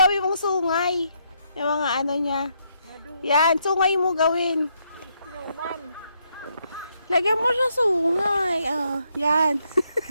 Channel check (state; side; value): inverted; both; correlation -0.76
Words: mong sungay. Yung mga niya. Madu. Yan, sungay mo gawin. Snowman. Lagyan mo siya sungay. Yan.